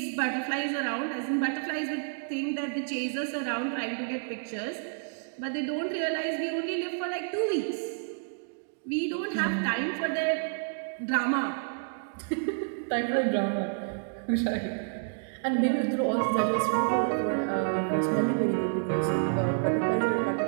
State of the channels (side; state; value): left; silent; digital silence